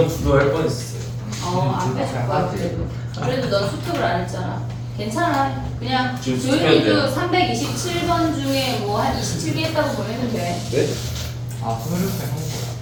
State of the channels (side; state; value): both; identical; correlation 1.00